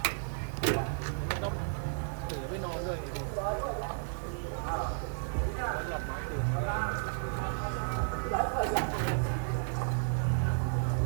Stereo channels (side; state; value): left; silent; digital silence